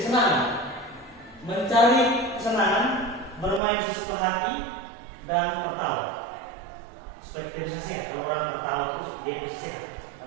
Mencari kesenangan, bermain sesuka hati, dan tertawa. Supaya kita bisa sehat. Kalau orang tertawa terus, dia bisa sehat.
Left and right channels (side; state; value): left; drops out; at 3.6 s